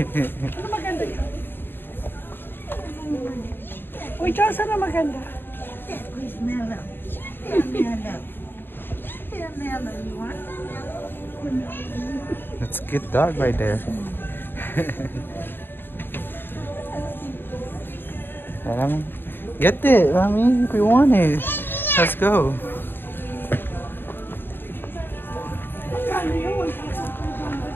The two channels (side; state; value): right; late; 0.098 ms